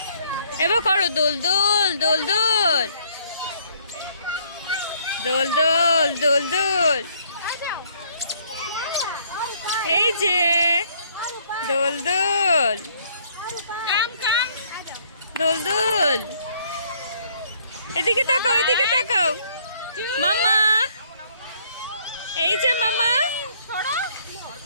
এবার করো দোল দোল দোল দোল দোল দোল দোল দোল। এই যে দোল দোল দোল দোল। এদিকে তাকাও, এদিকে তাকাও মামা। এই যে মামা,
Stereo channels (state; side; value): inverted; both; correlation -0.64